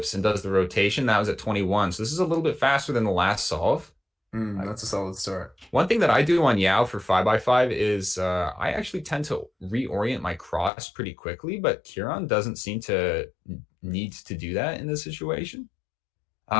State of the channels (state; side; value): drops out; right; at 10.7 s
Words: and does the rotation. That was at 21. So this is a little bit faster than the last solve. That's a solid start. One thing that I do on Yao for 5x5 is I actually tend to reorient my cross pretty quickly, but Kieron doesn't seem to need to do that in this situation.